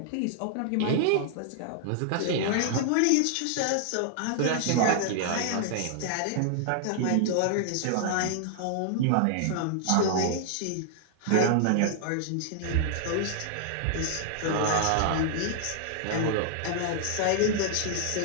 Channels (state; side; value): different; both; correlation -0.01